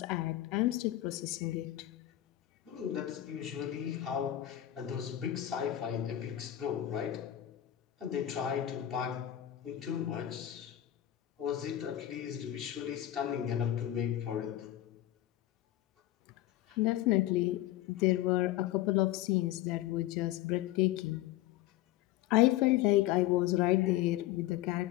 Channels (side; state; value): right; quieter; 13.5 dB